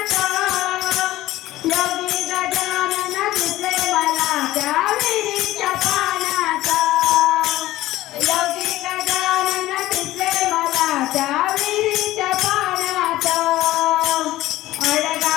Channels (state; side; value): quieter; right; 16.0 dB